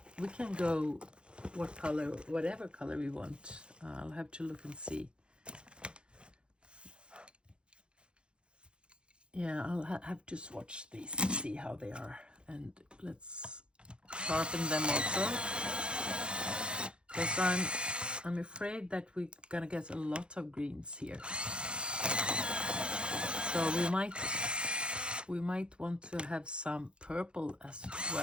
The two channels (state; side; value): late; left; 0.055 ms